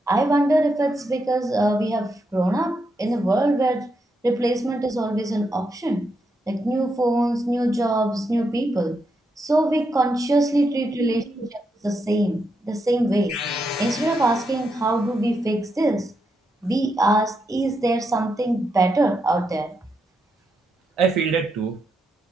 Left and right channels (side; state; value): both; normal; correlation 0.82